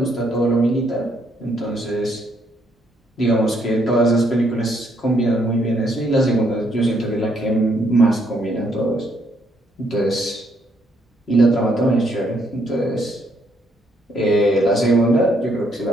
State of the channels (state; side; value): normal; both; correlation 0.72